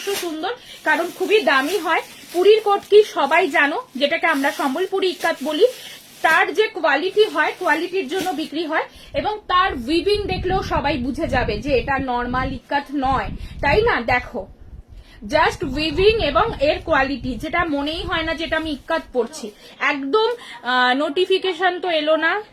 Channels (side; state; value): both; identical; correlation 1.00